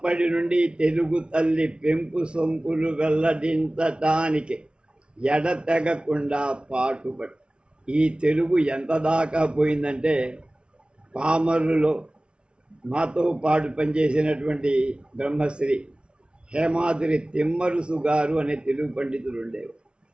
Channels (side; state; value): left; late; 0.056 ms